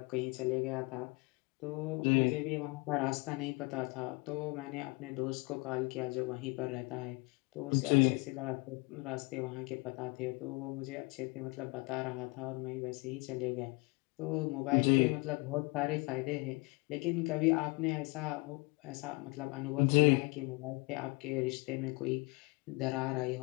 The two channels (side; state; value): right; quieter; 27.5 dB